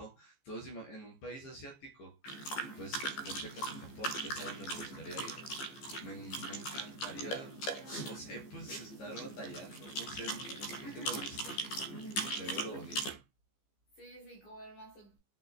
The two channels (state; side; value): late; right; 15 ms